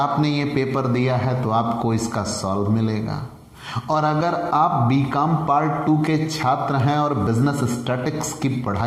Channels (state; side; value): identical; both; correlation 1.00